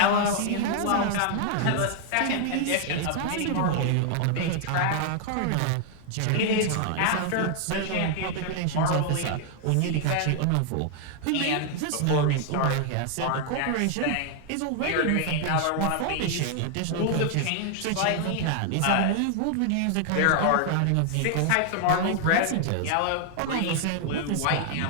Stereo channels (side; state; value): both; different; correlation 0.00